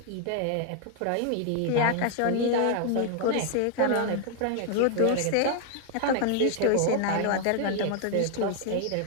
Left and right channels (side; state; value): both; different; correlation 0.00